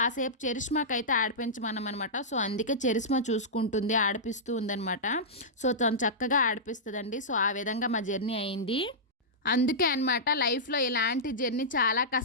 చరిష్మాకి అయితే ఆడిపించమన్నమాట. సో అందుకే చరిష్మా చూసుకుంటుంది, ఆడిపిస్తూ ఉందనమాట. సో తను చక్కగా ఆడిపిస్తుందండి. సో ఆ విధంగా మా జర్నీ అయింది. అందుకే అనమాట లైఫ్లో ఇలాంటి జర్నీ చాలా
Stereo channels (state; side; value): normal; both; correlation -0.14